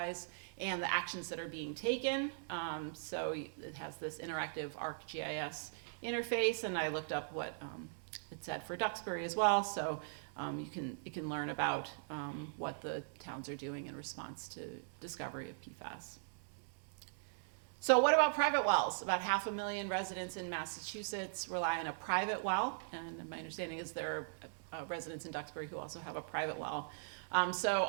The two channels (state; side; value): silent; left; digital silence